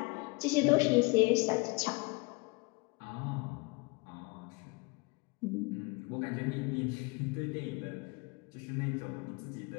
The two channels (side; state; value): right; quieter; 27.5 dB